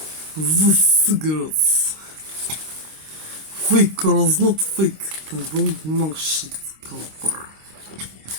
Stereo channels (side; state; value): left; late; 26 ms